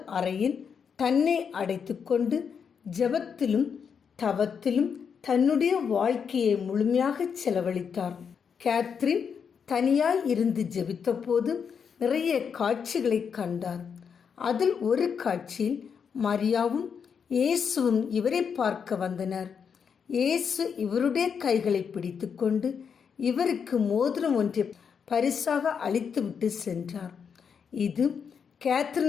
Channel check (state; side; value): quieter; right; 6.7 dB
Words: அறையில் தன்னை அடைத்து கொண்டு ஜெபத்திலும் தவத்திலும் தன்னுடைய வாழ்க்கையை முழுமையாக செலவழித்தார். கேத்ரின் தனியாய் இருந்து ஜெபித்த போது நிறைய காட்சிகளை கண்டார். அதில் ஒரு காட்சியில் மரியாவும் இயேசுவும் இவரை பார்க்க வந்தனர். இயேசு இவருடைய கைகளை பிடித்து கொண்டு இவருக்கு மோதிரம் ஒன்றை பரிசாக அளித்துவிட்டு சென்றார். இது